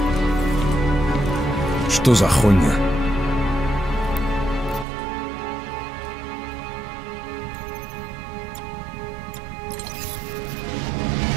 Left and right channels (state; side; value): drops out; left; at 4.9 s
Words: Что за хуйня?